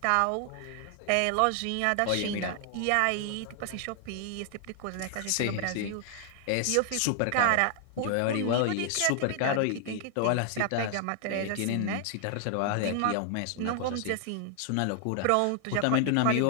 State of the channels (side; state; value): both; different; correlation 0.00